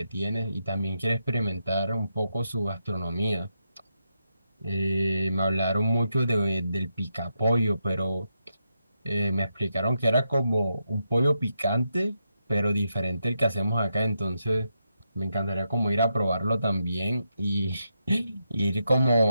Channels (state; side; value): inverted; both; correlation -0.84